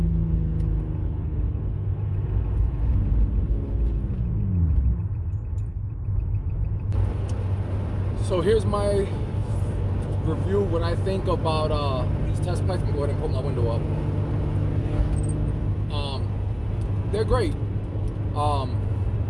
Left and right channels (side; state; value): both; identical; correlation 1.00